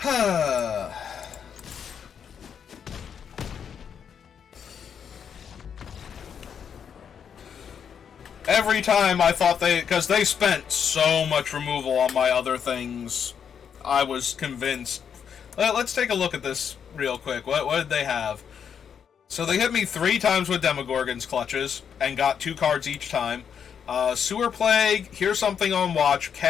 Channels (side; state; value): right; quieter; 7.6 dB